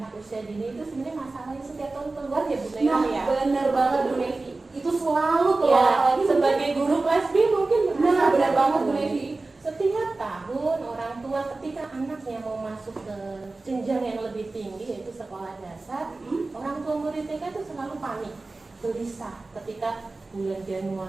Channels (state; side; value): quieter; left; 3.4 dB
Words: usia dini itu sebenarnya masalahnya setiap tahun keluar ya Bu Naila Nah, ya. bener banget Bu Nevi. Itu selalu tahun orang tua ketika anaknya mau masuk ke jenjang yang lebih tinggi yaitu sekolah dasar, orang tua murid TK itu selalu panik, gelisah ketika bulan